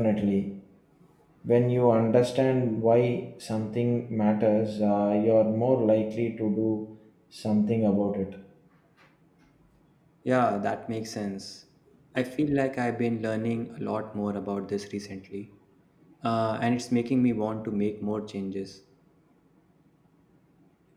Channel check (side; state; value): both; identical; correlation 1.00